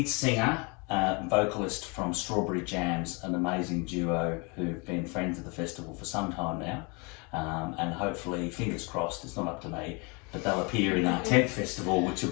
singer, vocalist from Strawberry Jamz, an amazing duo who've been friends of the festival for some time now. And hopefully, fingers crossed, it's not up to me, but they'll appear in our 10th festival, which will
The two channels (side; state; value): right; quieter; 30.8 dB